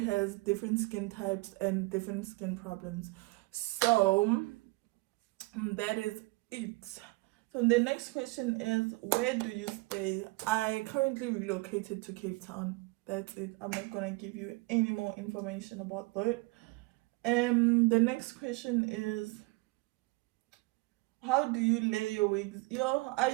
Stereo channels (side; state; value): left; quieter; 24.7 dB